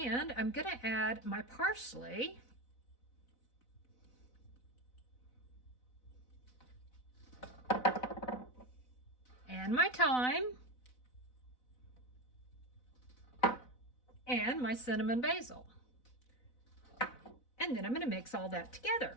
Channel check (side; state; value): right; late; 4.0 ms